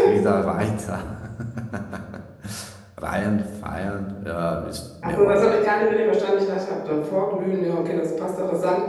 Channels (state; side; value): identical; both; correlation 1.00